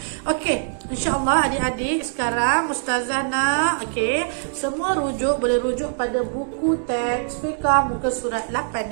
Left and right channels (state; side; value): silent; left; digital silence